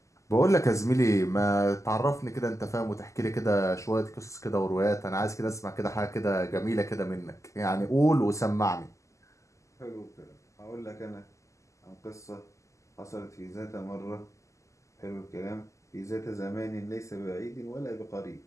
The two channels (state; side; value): late; right; 0.15 ms